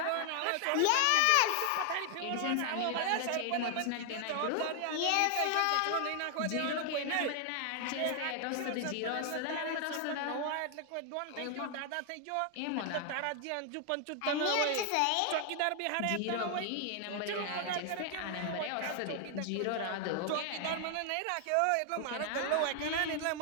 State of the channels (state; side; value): different; both; correlation 0.00